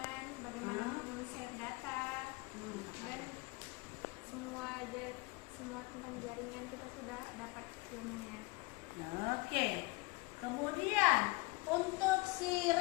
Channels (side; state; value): right; quieter; 24.6 dB